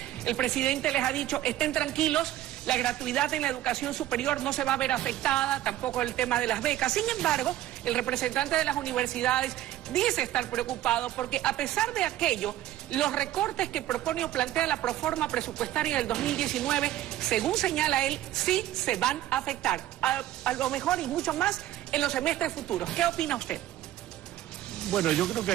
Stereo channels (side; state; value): left; quieter; 13.6 dB